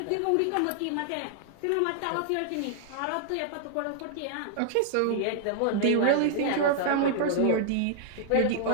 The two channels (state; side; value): different; both; correlation -0.01